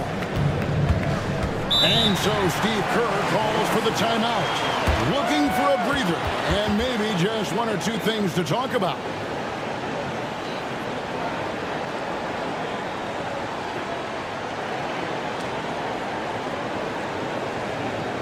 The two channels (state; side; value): identical; both; correlation 1.00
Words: And so Steve Kerr calls for the timeout. Looking for a breather, and maybe just 1 or 2 things to talk about.